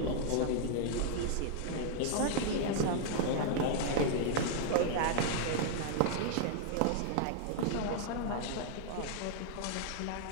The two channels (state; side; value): different; both; correlation -0.01